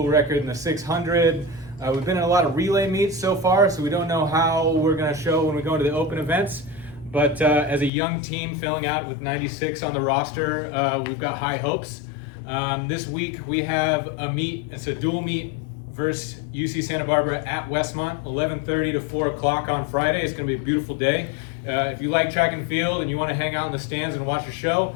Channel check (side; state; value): right; drops out; at 7.9 s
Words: record in the 600. We've been in a lot of relay meets so far, so we don't know how we're going to show when we go into the open events. But as a young team filling out with 96 on the roster, we've got high hopes. This week we have a meet. It's a dual meet versus UC Santa Barbara at Westmont, 11:30 to 4 o'clock on Friday. It's going to be a beautiful day. If you like track and field and you want to hang out in the stands and watch a show,